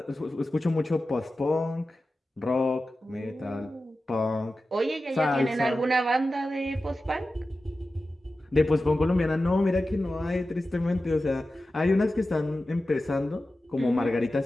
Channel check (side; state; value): both; normal; correlation 0.94